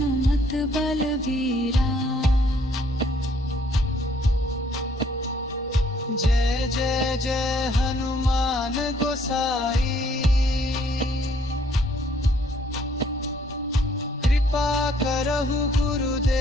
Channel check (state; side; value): normal; both; correlation 0.64